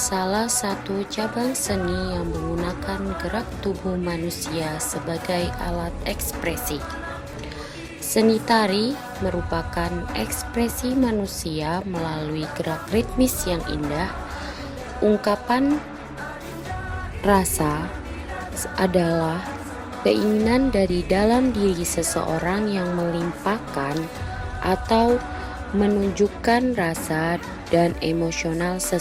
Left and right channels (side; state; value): both; identical; correlation 1.00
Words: satu cabang seni yang menggunakan gerak tubuh manusia sebagai alat ekspresi. Seni tari merupakan ekspresi manusia melalui gerak ritmis yang indah. Ungkapan rasa adalah keinginan dari dalam diri seseorang yang melimpahkan atau menunjukkan rasa dan emosional